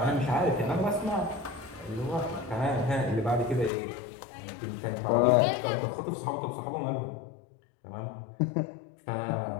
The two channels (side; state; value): right; drops out; at 3.7 s